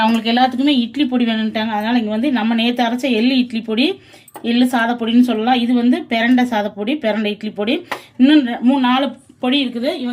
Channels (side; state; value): both; identical; correlation 1.00